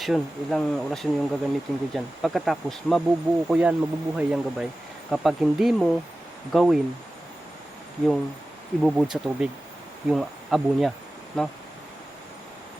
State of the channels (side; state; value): both; normal; correlation 0.96